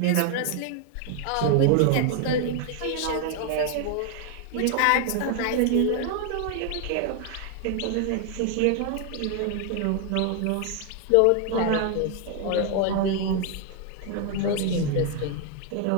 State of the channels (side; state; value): both; different; correlation 0.00